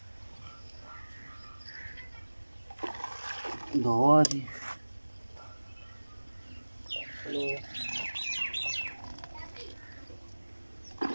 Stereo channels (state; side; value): inverted; both; correlation -1.00